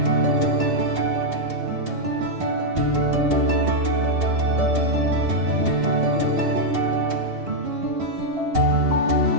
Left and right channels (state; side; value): late; left; 2.8 ms